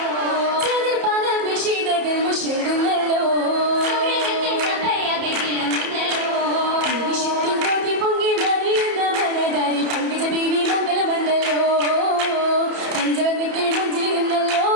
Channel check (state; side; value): late; left; 31 ms